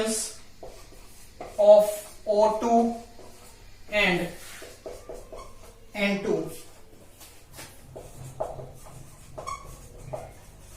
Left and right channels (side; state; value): both; identical; correlation 1.00